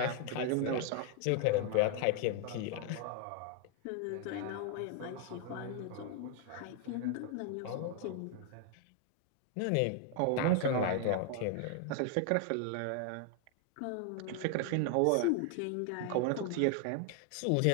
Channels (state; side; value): different; both; correlation 0.00